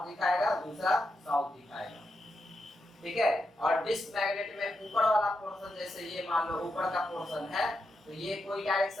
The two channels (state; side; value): normal; both; correlation 0.84